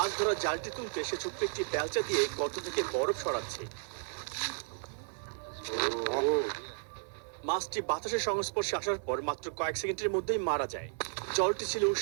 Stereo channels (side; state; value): left; silent; 55 dB below the other